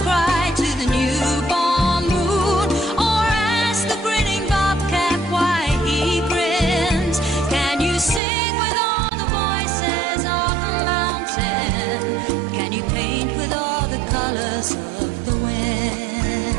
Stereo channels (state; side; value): drops out; left; at 8.2 s